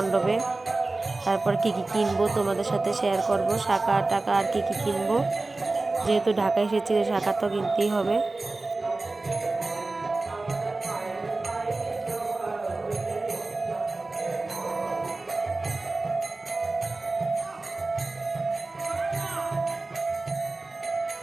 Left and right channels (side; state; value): left; quieter; 3.3 dB